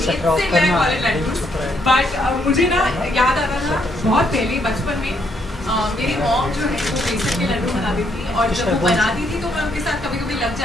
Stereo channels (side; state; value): both; normal; correlation 0.73